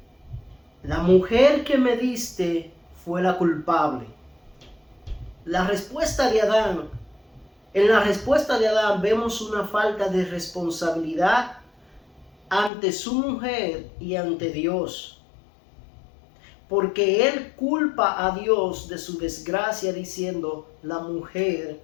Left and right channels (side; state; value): right; drops out; at 12.7 s